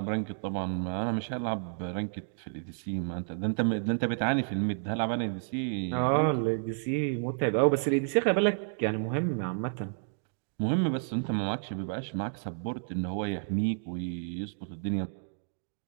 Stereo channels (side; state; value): left; silent; digital silence